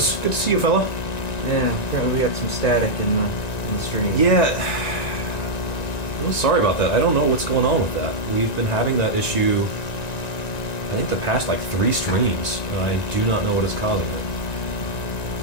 Good to see you, fella. Yeah, apparently we got some static in the stream. Yeah. Well, sorry about that. I don't know what's going on with that. We've been having that issue, I think, the past, 3 streams, and I do not know what is causing it.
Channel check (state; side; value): late; right; 1.9 ms